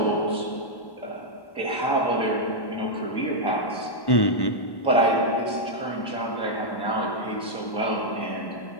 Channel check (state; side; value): late; right; 1.1 ms